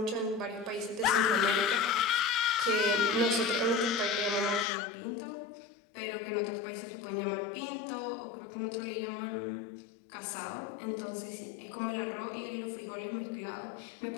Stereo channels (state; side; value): drops out; right; at 4.7 s